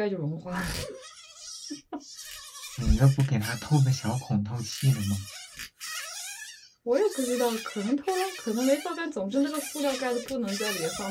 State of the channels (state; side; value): identical; both; correlation 1.00